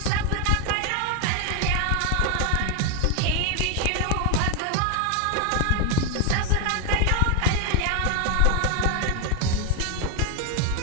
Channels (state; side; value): different; both; correlation 0.01